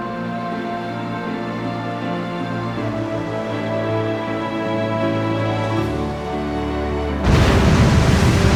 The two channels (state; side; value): identical; both; correlation 1.00